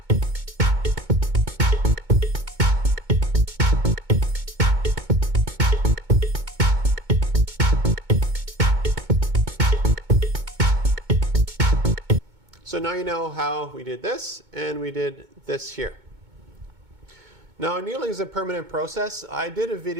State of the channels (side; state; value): left; late; 2.2 ms